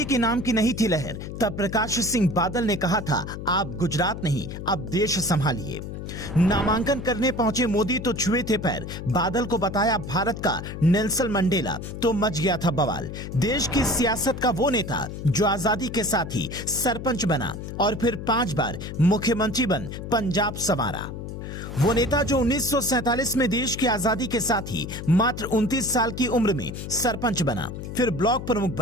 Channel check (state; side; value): noise; left; hum, 8 dB below the sound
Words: के नाम की नहीं थी लहर, तब प्रकाश सिंह बादल ने कहा था, आप गुजरात नहीं अब देश संभालिए। नामांकन करने पहुंचे मोदी तो छुए थे पैर, बादल को बताया भारत का नेल्सन मंडेला, तो मच गया था बवाल। देश की सियासत का वो नेता जो आजादी के साथ ही सरपंच बना और फिर 5 बार मुख्यमंत्री बन पंजाब संवारा। वो नेता जो 1947 में देश की आजादी के साथ ही मात्र 29 साल की उम्र में सरपंच बना, फिर ब्लॉक प्रमुख